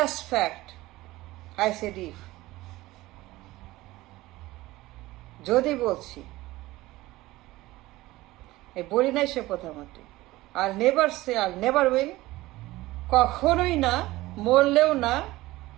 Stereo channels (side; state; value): left; quieter; 18.3 dB